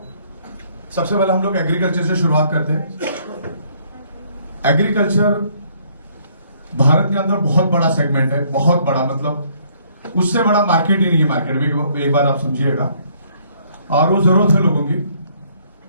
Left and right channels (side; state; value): both; inverted; correlation -0.64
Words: सबसे पहले हम लोग एग्रीकल्चर से शुरुआत करते हैं। एग्रीकल्चर भारत के अंदर बहुत बड़ा सेगमेंट है, बहुत बड़ा, मतलब उससे बड़ा मार्केट ही नहीं है मार्केट में, एक बार आप समझिएगा। और वो जरूरत है लोगों की।